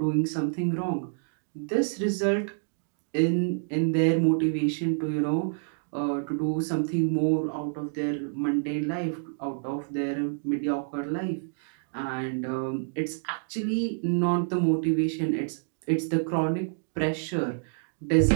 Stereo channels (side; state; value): left; silent; digital silence